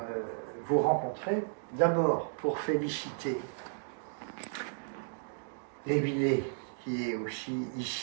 vous rencontrer. D'abord, pour féliciter Émilie, qui est aussi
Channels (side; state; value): left; silent; digital silence